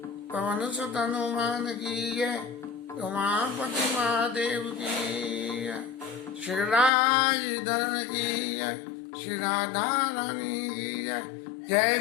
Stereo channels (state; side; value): drops out; right; at 6.9 s